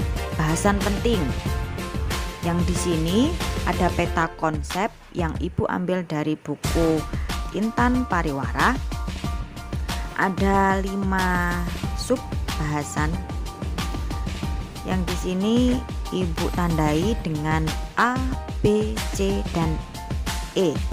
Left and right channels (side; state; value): both; identical; correlation 1.00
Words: bahasan penting. Yang di sini ada peta konsep yang Ibu ambil dari buku Intan Pariwara. Ada 5 sub bahasan yang di sini Ibu tandai dengan A, B, C, dan E.